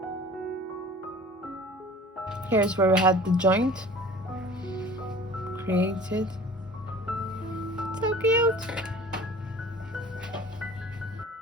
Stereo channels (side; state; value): both; normal; correlation 0.44